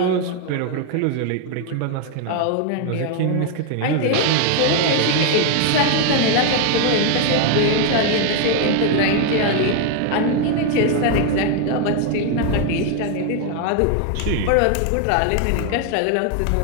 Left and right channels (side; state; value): both; different; correlation 0.00